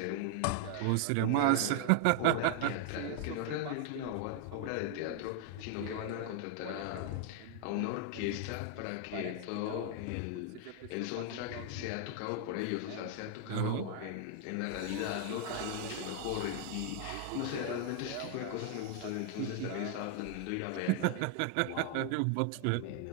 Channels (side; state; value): both; different; correlation 0.00